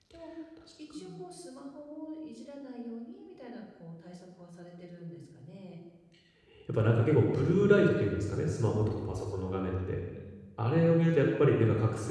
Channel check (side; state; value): both; identical; correlation 1.00